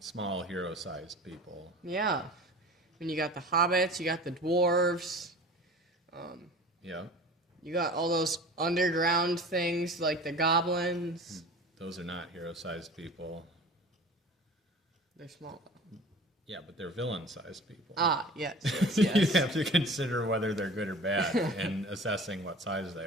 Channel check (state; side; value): normal; both; correlation 0.40